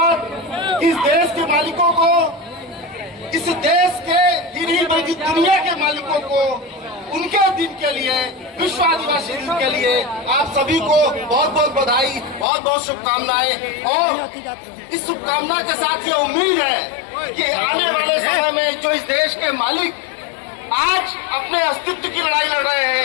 इस देश के मालिकों को, इस देश के नहीं बल्कि दुनिया के मालिकों को उनके दिन के लिए, विश्व आदिवासी दिन के लिए आप सभी को बहुत बहुत बधाई, बहुत बहुत शुभकामनाएं। और इस शुभकामना के साथ ये उम्मीद है कि आने वाले समय में जो इस देश के मालिक आज अपने अस्तित्व की लड़ाई लड़ रहे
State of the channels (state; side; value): drops out; right; at 12.5 s